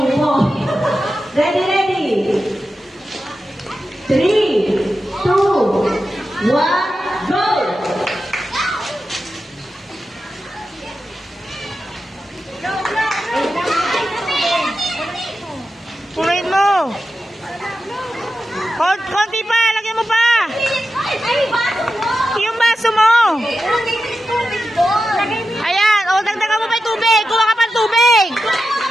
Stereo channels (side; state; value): both; normal; correlation 0.91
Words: Ready, ready. 3, 2, 1, go! Punuin mo. Konti pa, lagyan mo pa. Yung baso mo. Ayan, o dagdagan mo pa yung tubig. Kuha ka pa ng tubig.